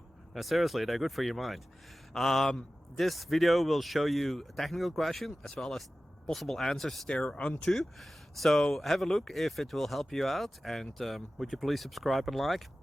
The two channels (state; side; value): normal; both; correlation 0.95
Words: No, seriously, they're good for your mind. This video will show you a technical question as well as possible answers thereunto. So have a look if it will help you out, and would you please subscribe and like?